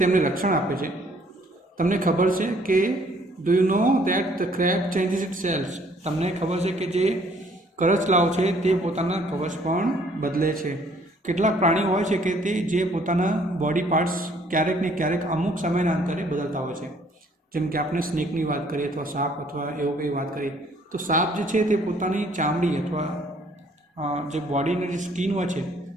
રક્ષણ આપે છે. તમને ખબર છે કે do you know that the crab changes its shells? તમને ખબર છે કે જે કરચલાઓ છે તે પોતાના કવચ પણ બદલે છે. કેટલાક પ્રાણીઓ હોય છે કે તે જે પોતાના બોડી પાર્ટ્સ ક્યારેક ને ક્યારેક અમુક સમયના અંતરે બદલતા હોય છે. જેમ કે આપણે સ્નેકની વાત કરીએ અથવા સાપ અથવા એવું કંઈ વાત કરીએ તો સાપ જે છે તે પોતાની ચામડી અથવા જે બોડીની જે સ્કિન હોય છે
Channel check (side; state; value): both; normal; correlation 0.61